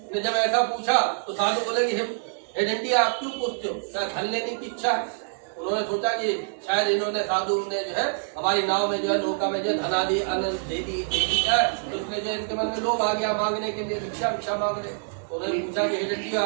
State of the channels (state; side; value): silent; left; digital silence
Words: ने जब ऐसा पूछा तो साधु बोले कि हे दंडी आप क्यों पूछते हो, क्या धन लेने की इच्छा है? उन्होंने सोचा कि शायद इन्होंने साधु ने जो है हमारी नाव में जो है नौका में जो है धनादि अन्न दे दी है, तो इसलिए जो इनके मन में लोभ आ गया मांगने के लिए, भिक्षा मांग रहे। तो उन्होंने पूछा कि हे दंडी